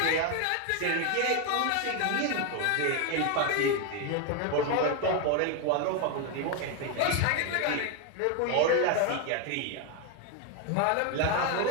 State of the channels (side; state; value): both; different; correlation 0.01